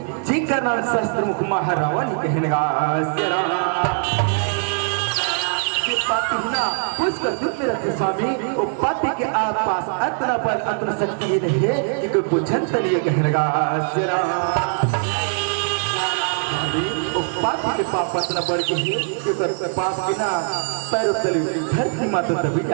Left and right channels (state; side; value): silent; left; 62 dB below the other